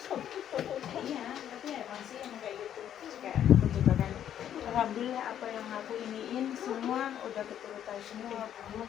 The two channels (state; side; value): quieter; right; 10.2 dB